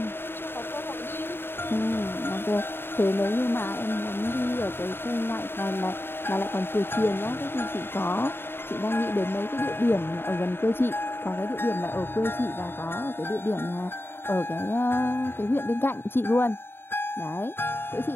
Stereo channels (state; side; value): late; right; 0.11 ms